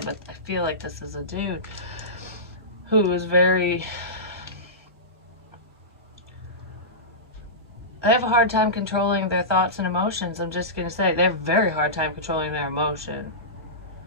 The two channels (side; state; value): both; normal; correlation -0.18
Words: but I feel like this is a dude who is very... They have a hard time controlling their thoughts and emotions. I'm just going to say, they have a very hard time controlling their emotion.